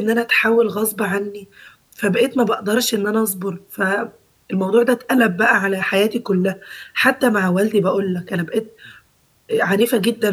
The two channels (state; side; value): identical; both; correlation 1.00